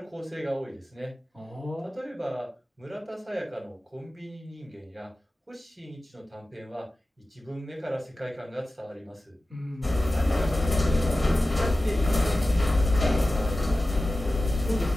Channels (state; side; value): normal; both; correlation 0.95